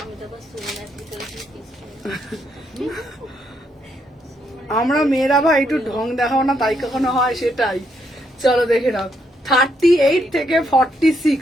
আমি তো আবার সুমনার ভিতরে আমরা মেয়েরা ভাই একটু ঢং দেখাও না, তাই কখনো হয়, সেটাই। চলো দেখে নাও 38 থেকে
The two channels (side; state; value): both; normal; correlation 0.76